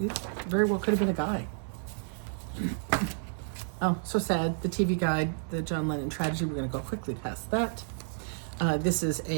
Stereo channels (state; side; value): silent; left; digital silence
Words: very well could have been a guy. Oh, so sad. The TV guide, the John Lennon tragedy. We're going to go quickly past that. This is